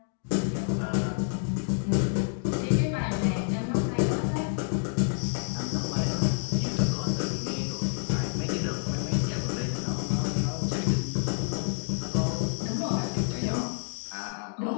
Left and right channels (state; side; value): silent; right; digital silence